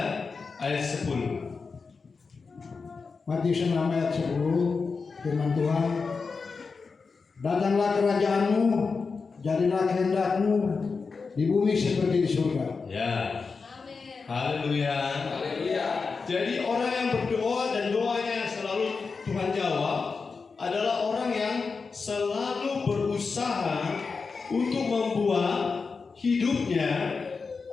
ayat 10. Matius 6 ayat 10, firman Tuhan, datanglah kerajaanmu, jadilah kehendakmu di bumi seperti di surga. Ya. Haleluya. Haleluya. Jadi orang yang berdoa dan doanya selalu Tuhan jawab adalah orang yang selalu berusaha untuk membuat hidupnya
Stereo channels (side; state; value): right; quieter; 4.8 dB